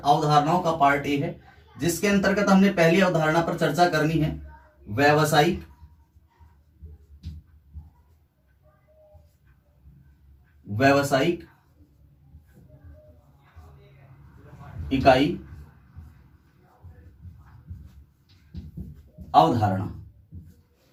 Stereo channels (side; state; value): both; identical; correlation 1.00